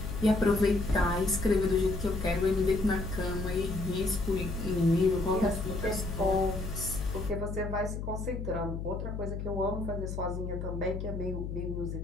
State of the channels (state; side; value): noise; left; hum, 5 dB below the sound